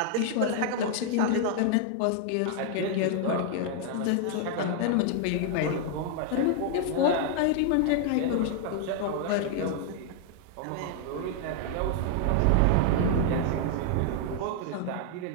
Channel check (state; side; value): different; both; correlation 0.00